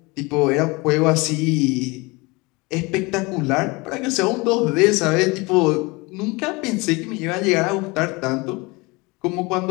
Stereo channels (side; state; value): right; quieter; 25.3 dB